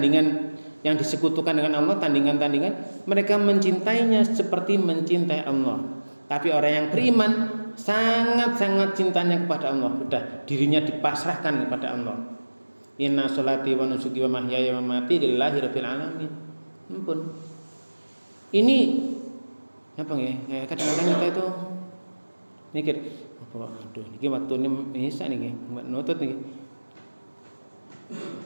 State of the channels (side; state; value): both; inverted; correlation -1.00